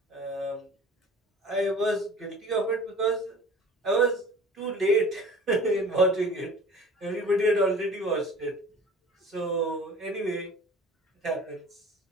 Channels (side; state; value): both; normal; correlation 0.43